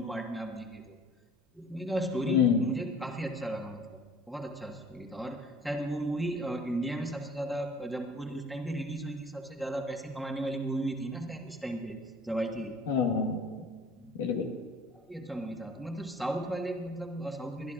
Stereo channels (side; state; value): both; normal; correlation 0.50